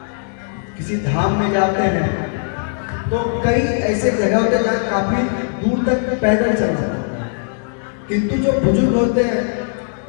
किसी धाम में जाते हैं तो कई ऐसे जगह होते हैं जहाँ काफी दूर तक पैदल चल जाते हैं, किंतु जो बुजुर्ग होते हैं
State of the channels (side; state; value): right; silent; 63 dB below the other